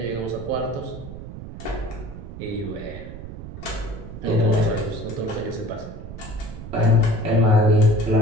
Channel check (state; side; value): noise; right; rumble, 11 dB below the sound